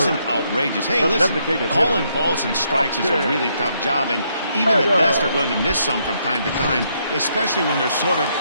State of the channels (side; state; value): both; inverted; correlation -0.74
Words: outrageous. Hey, listen, calling balls and strikes is a really tough job, and even the best are going to miss some from time to time, especially when they're sort of